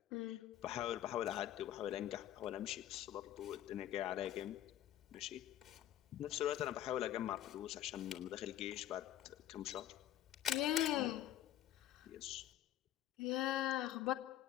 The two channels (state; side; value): quieter; right; 12.4 dB